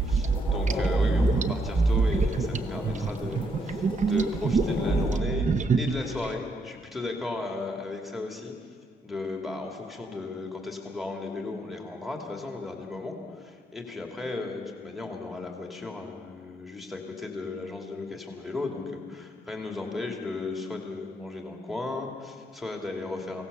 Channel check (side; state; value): both; normal; correlation 0.75